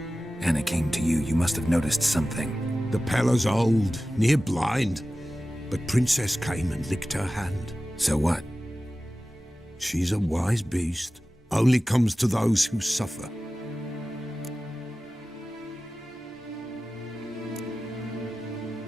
Anna came to you, you must have noticed something. The Pella's old, near blind, but Princess came and licked her hand. So what? She's a wise beast, only comes to those who suffer.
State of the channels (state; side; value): normal; both; correlation 0.95